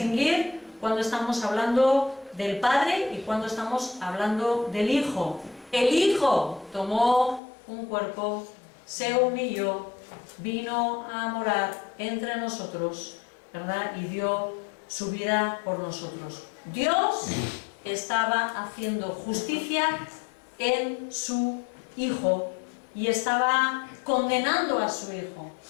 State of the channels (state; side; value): drops out; right; at 7.4 s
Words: cuando estamos hablando del Padre y cuando estamos hablando del Hijo. El Hijo tomó un cuerpo, se humilló, vino a morar entre nosotros, ¿verdad? Y dio su vida por nosotros. Dios estaba haciendo justicia en su Hijo y estaba condenando a su Hijo.